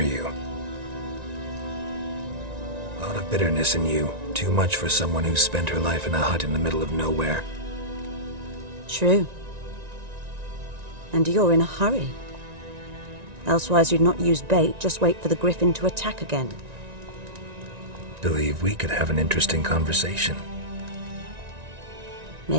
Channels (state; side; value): late; left; 1.9 ms